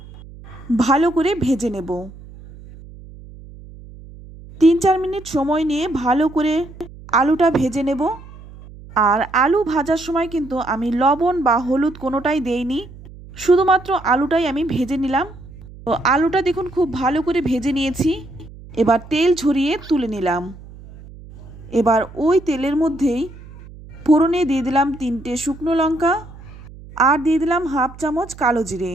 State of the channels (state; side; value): noise; right; hum, 18 dB below the sound